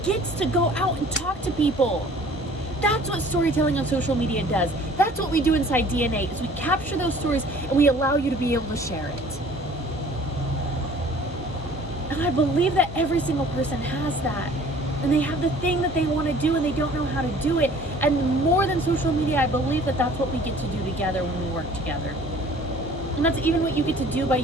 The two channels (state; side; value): normal; both; correlation 0.51